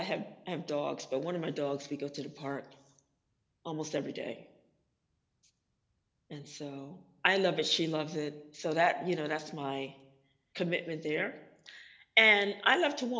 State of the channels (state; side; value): identical; both; correlation 1.00